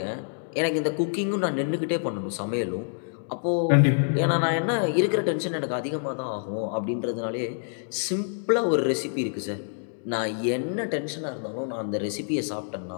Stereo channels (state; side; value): silent; right; digital silence